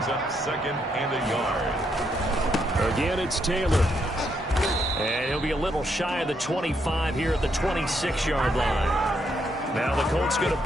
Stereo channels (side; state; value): both; normal; correlation 0.76